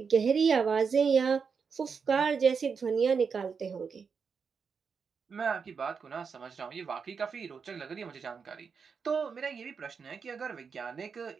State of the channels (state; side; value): quieter; left; 5.8 dB